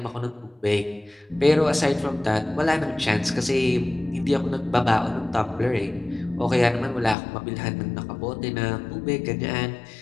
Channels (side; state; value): right; drops out; at 7.2 s